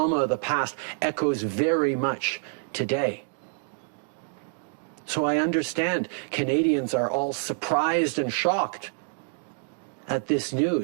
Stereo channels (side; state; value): left; silent; 60 dB below the other